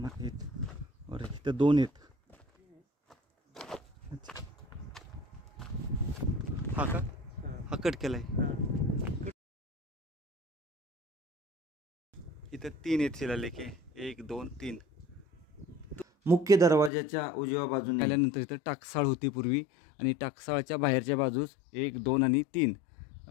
आहेत और इथं 2 आहेत. हा का, हा कट केलाय. इथं 3 आहेत शिलालेख, 1 2 3. मुख्य दरवाजाच्या उजव्या बाजूने आल्यानंतर इथं टाकसाळ होती पूर्वी आणि टाकसाळच्या बाहेरच्या बाजूस 1 2 आणि 3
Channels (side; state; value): right; drops out; at 16.9 s